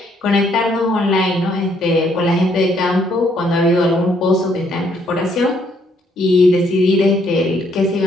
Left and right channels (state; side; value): normal; both; correlation 0.69